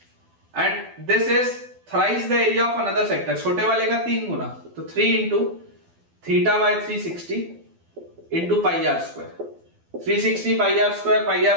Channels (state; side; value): late; left; 12 ms